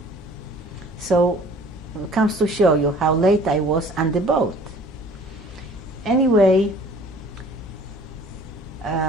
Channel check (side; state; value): both; normal; correlation 0.50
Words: So it comes to show you how late I was on the boat. Anyway,